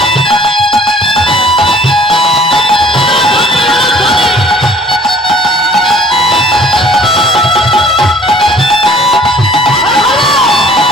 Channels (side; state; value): both; normal; correlation 0.54